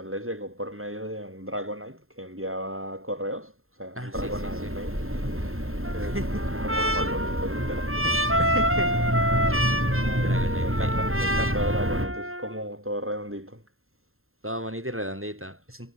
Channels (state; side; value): late; left; 0.61 ms